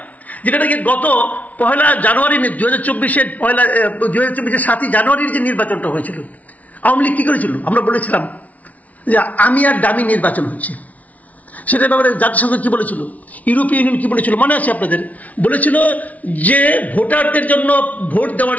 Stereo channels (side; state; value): right; late; 0.071 ms